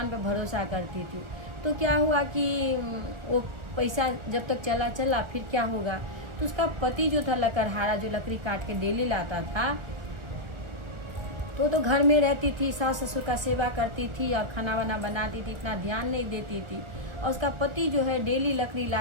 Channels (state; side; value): late; left; 1.4 ms